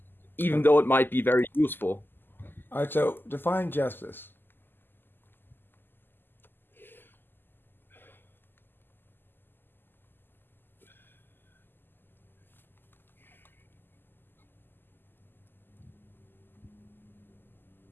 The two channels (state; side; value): late; right; 0.095 ms